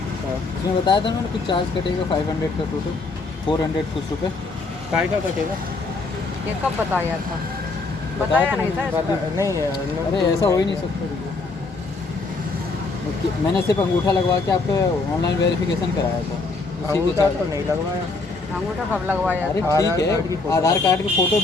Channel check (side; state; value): right; quieter; 3.7 dB